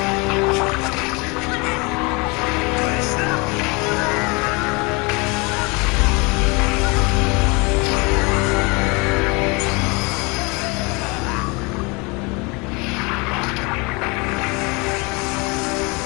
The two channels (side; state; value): right; quieter; 28.3 dB